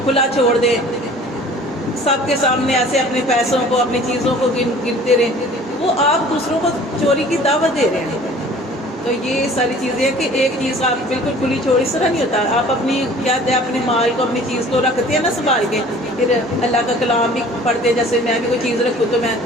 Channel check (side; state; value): both; normal; correlation 0.49